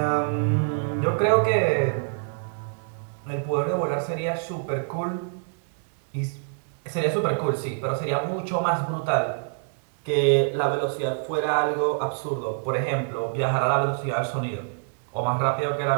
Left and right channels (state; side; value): silent; left; digital silence